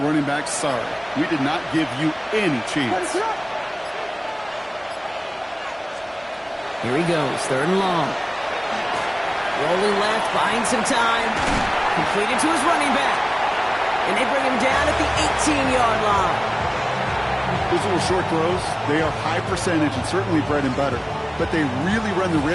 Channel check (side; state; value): both; identical; correlation 1.00